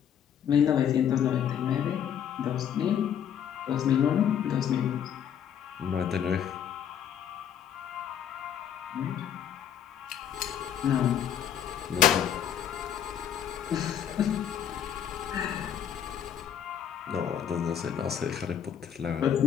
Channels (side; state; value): right; quieter; 9.2 dB